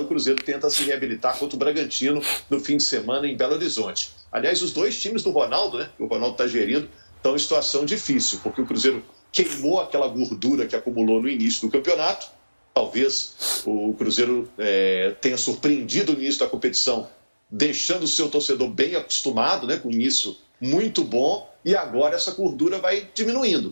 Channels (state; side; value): inverted; both; correlation -1.00